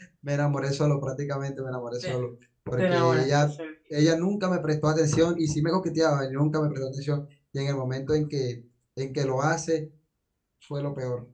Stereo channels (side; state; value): both; identical; correlation 1.00